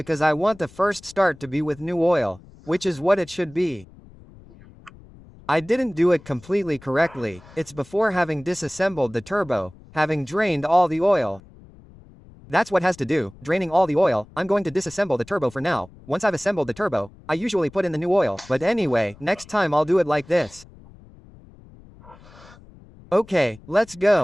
I want the first start to be with new oil, which is what it should be. I didn't do it completely correctly, it's before having disassembled the turbo, having drained all the oil. That's what has to do, draining all the oil. I'm going to disassemble the turbo for now. Once I've assembled the turbo, I usually put in the new oil, but anyway, next time I'll do it like this. Okay, let's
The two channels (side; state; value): left; noise; rumble, 23 dB below the sound